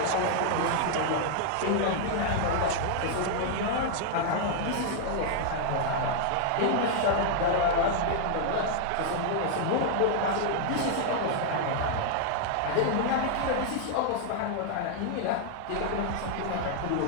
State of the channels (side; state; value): both; different; correlation -0.01